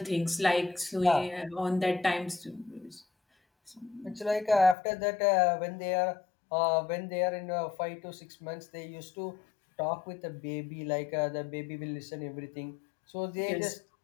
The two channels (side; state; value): right; drops out; at 4.8 s